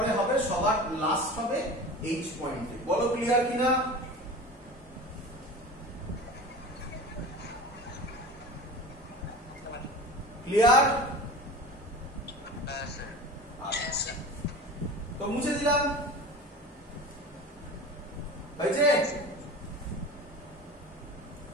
হবে সবার লাস্ট হবে এইচ পয়েন্টে। বলো ক্লিয়ার কিনা? ক্লিয়ার? আচ্ছা, তো মুছে দিলাম, হয়েছে?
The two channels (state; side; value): normal; both; correlation 0.35